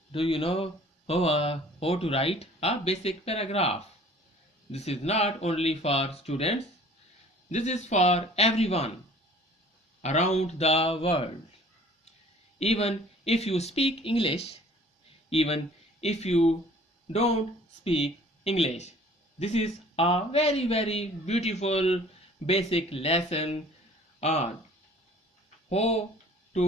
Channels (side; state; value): both; normal; correlation 0.51